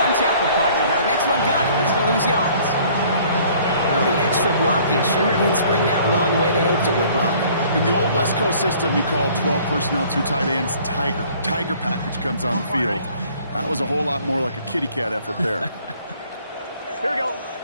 tackle partner, but the next one got him. He's going to lose yards. Well, the extra blocking sure didn't spring that run the way they hoped it would, Brock. In the old West Coast system, you call 12 personnel, 2 tight ends, Tiger. Tiger package comes on the field. That was a whole lot more like a kitty cat effort there. Here we go.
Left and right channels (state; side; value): inverted; both; correlation -0.56